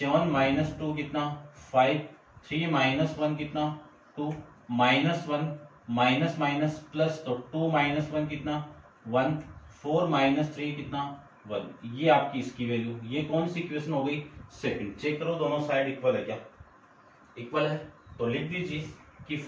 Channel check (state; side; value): identical; both; correlation 1.00